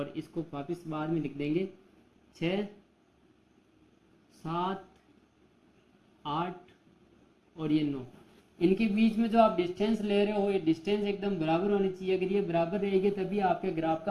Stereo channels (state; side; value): identical; both; correlation 1.00